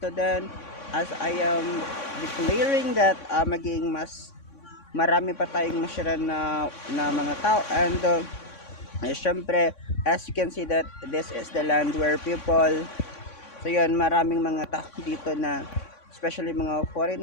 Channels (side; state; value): right; late; 3.6 ms